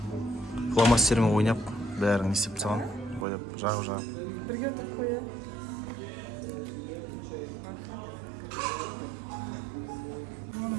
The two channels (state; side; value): drops out; left; at 3.2 s